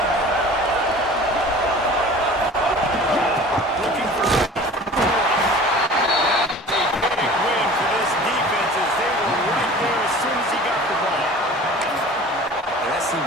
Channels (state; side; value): normal; both; correlation 0.42